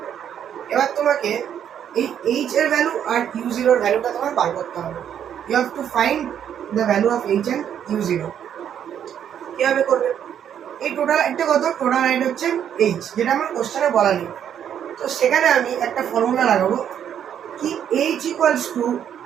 এবার তোমাকে এই এইচ এর ভ্যালু আর u0 এর ভ্যালুটা তোমার বার করতে হবে। You have to find the value of H and u0। কিভাবে করবে, এই টোটাল একটা কত, টোটাল হাইট হচ্ছে এইচ, যেটা আমার কোশ্চেনে বলা নেই। তো সেখানে আমি একটা ফর্মুলা লাগাবো কি, H equals to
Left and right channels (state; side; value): quieter; left; 9.2 dB